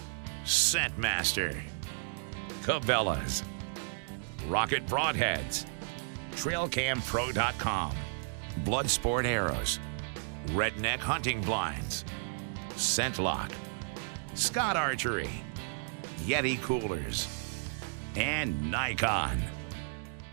Scentmaster, Cabela's, Rocket Broadheads, TrailCamPro.com, Bloodsport Arrows, Redneck Hunting Blinds, ScentLock, Scott Archery, Yeti Coolers, and Nikon.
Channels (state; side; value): silent; left; digital silence